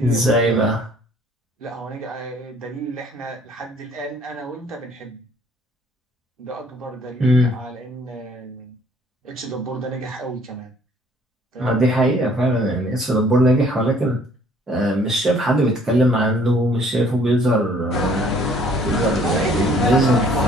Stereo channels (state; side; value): normal; both; correlation 0.59